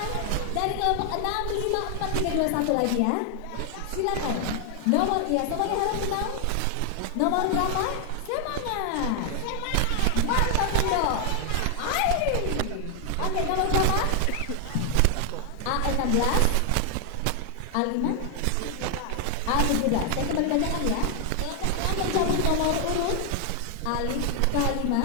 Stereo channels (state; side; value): different; both; correlation 0.00